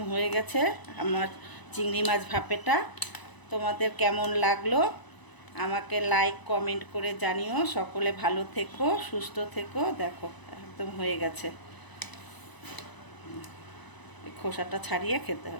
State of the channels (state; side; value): late; right; 1.0 ms